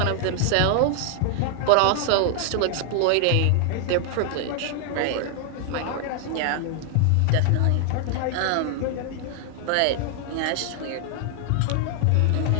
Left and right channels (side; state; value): both; different; correlation 0.00